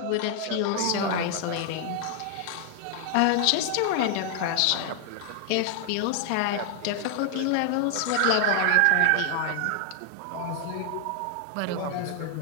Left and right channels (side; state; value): both; different; correlation 0.00